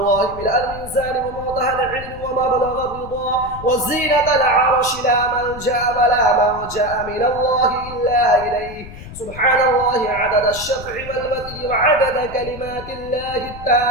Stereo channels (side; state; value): left; noise; rumble, 14 dB below the sound